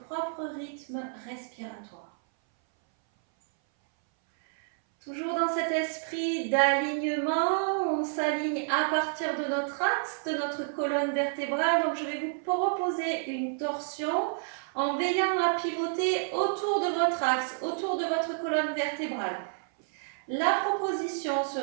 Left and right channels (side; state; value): left; silent; 58 dB below the other